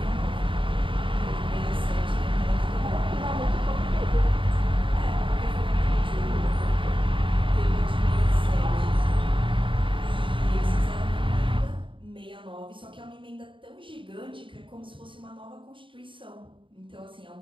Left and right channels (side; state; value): left; late; 0.25 ms